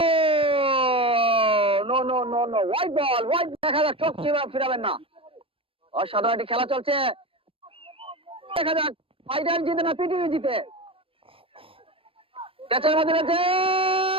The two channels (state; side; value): late; left; 0.27 ms